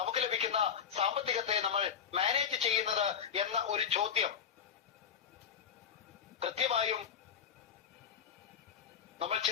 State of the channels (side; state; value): right; quieter; 7.7 dB